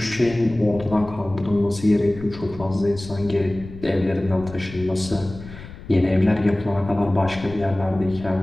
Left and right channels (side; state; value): left; noise; rumble, 15 dB below the sound